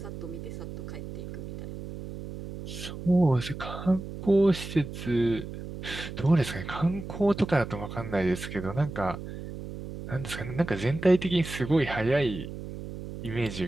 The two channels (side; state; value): right; noise; hum, 10 dB below the sound